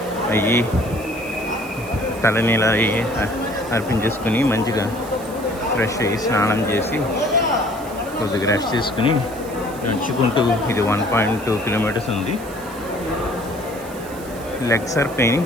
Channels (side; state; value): right; noise; hiss, 18 dB below the sound